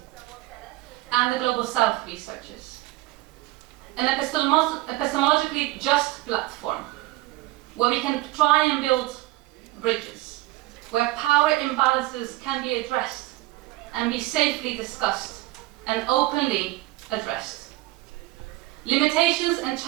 and the Global South researchers. An epistemologically just platform where we can try and build bridges, where power imbalances can be addressed and be safely discussed and openly addressed. Limitations and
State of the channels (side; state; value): left; quieter; 18.8 dB